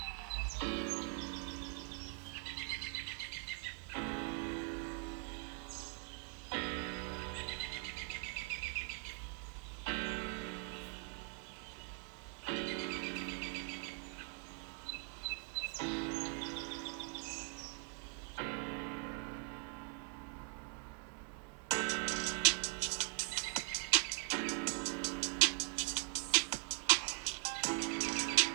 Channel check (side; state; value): left; quieter; 38.8 dB